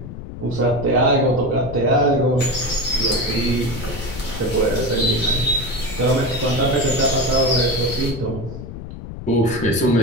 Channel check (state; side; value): noise; left; rumble, 10 dB below the sound